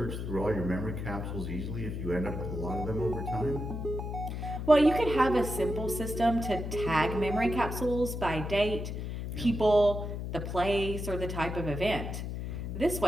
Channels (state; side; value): noise; left; hum, 5 dB below the sound